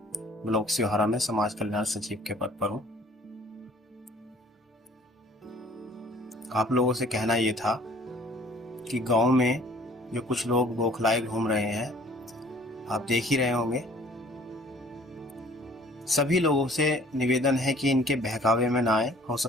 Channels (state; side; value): normal; both; correlation 0.54